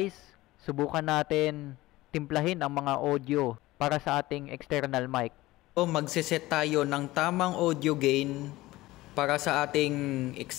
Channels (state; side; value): quieter; right; 18.2 dB